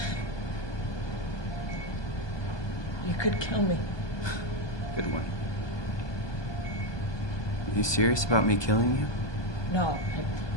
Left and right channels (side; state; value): right; late; 1.2 ms